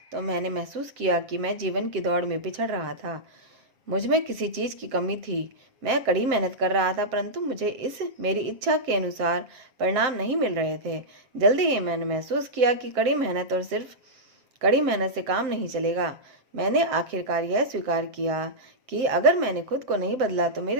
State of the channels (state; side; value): late; left; 7.5 ms